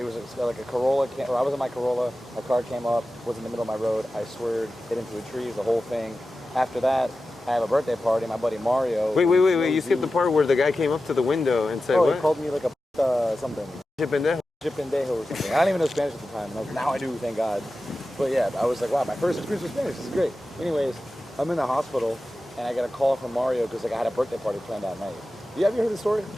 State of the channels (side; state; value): both; normal; correlation 0.94